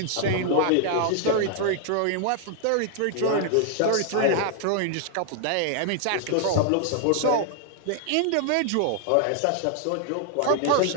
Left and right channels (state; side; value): different; both; correlation 0.00